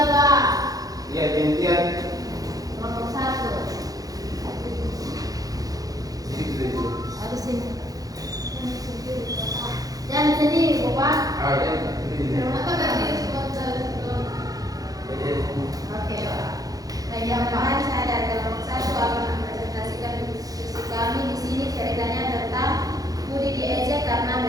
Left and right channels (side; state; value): left; late; 0.18 ms